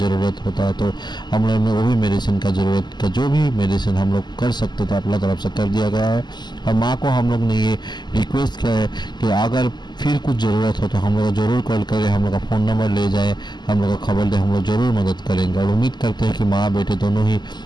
होता है, तो हम लोग ने वो भी मेडिसिन का ज़रूरत का जो भी मेडिसिन हम लोग कर सकते थे अपना तरफ से कर दिया गया है। और माँ को हम लोग ने ये रिक्वेस्ट किया है कि अगर फिर कुछ ज़रूरत हो तो हम लोग ज़रूर कॉल करें, हम लोग का फ़ोन नंबर ले जाए, हम लोग को खबर दे, हम लोग ज़रूर मदद करेंगे। और उम्मीद करते हैं कि माँ बेटे दोनों ही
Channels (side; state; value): right; late; 0.21 ms